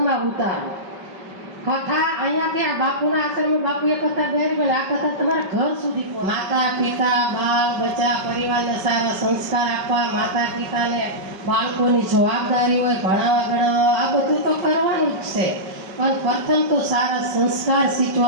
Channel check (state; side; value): late; left; 5.2 ms